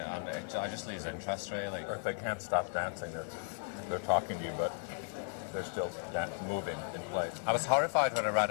I just lose interest, really. Or if they can't stop dancing, they're talking to you, but they're still moving in place. I was horrified when I read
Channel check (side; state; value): right; silent; 54 dB below the other